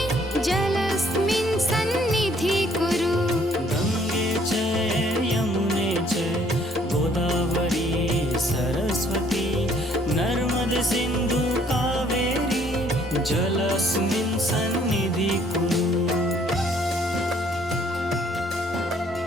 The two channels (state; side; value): normal; both; correlation 0.62